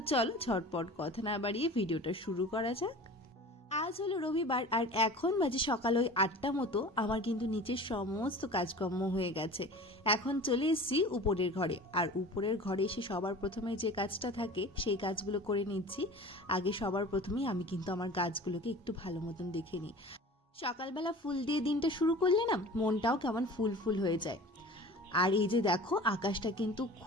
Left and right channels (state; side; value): normal; both; correlation 0.39